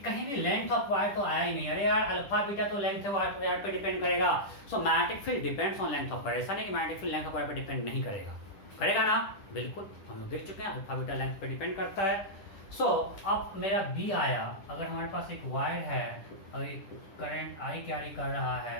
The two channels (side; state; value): right; late; 10 ms